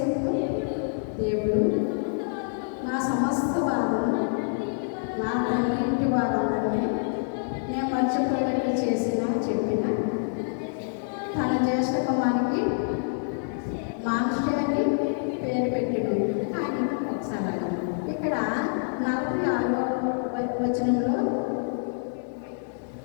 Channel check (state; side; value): silent; right; 58 dB below the other